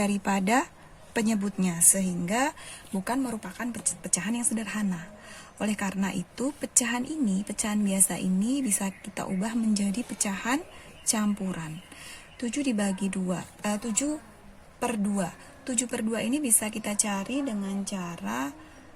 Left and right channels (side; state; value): both; identical; correlation 1.00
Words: penyebutnya, sehingga bukan merupakan pecahan yang sederhana. Oleh karena itu, pecahan biasa ini bisa kita ubah menjadi pecahan campuran. 7/2. 7/2 ini bisa kita cari dengan cara